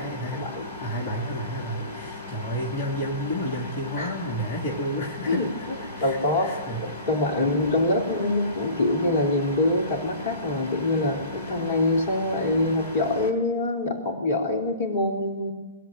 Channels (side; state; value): both; inverted; correlation -0.41